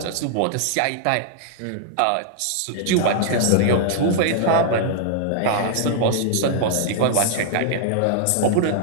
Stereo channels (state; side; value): different; both; correlation -0.01